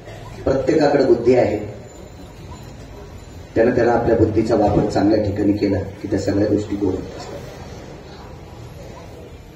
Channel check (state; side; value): identical; both; correlation 1.00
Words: प्रत्येकाकडे बुद्धी आहे, त्यानं त्याला आपल्या बुद्धीचा वापर चांगल्या ठिकाणी केला की त्या सगळ्या गोष्टी गोड असतात.